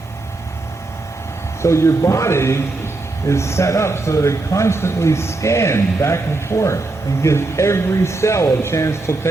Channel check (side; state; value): left; quieter; 3.3 dB